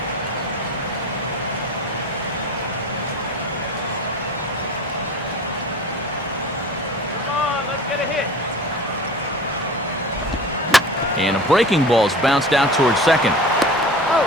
And a breaking ball's bounced out towards second.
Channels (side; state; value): both; normal; correlation 0.37